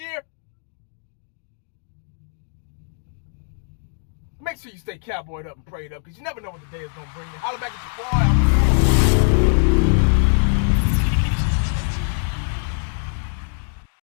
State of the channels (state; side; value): silent; right; 64 dB below the other